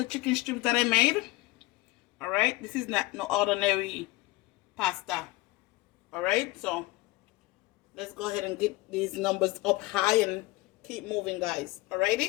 chicken strips that I made. Alright? This is not no ordinary pasta. Alright? So let's go ahead and get these numbers up high and keep moving, guys.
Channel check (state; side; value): quieter; right; 20.9 dB